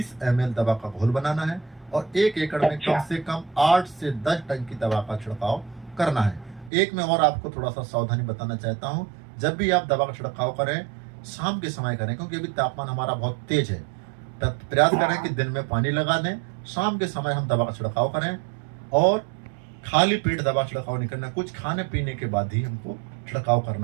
ml दवा का घोल बनाना है, और 1 एकड़ में अच्छा। कम से कम 8 से 10 टन की दवा का छिड़काव करना है। एक में और आपको थोड़ा सा सावधानी बताना चाहता हूँ, जब भी आप दवा का छिड़काव करें शाम के समय करें, क्योंकि अभी तापमान हमारा बहुत तेज है। प्रयास करें कि दिन में पानी लगा दें, शाम के समय हम दवा का छिड़काव करें, और खाली पेट दवा छिड़काव नहीं करना। कुछ खाने पीने के बाद ही हमको छिड़काव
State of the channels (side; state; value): left; drops out; at 6.7 s